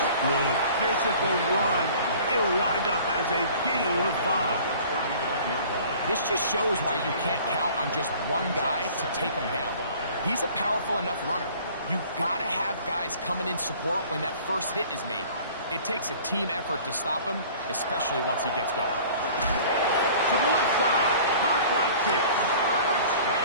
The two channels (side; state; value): both; inverted; correlation -0.48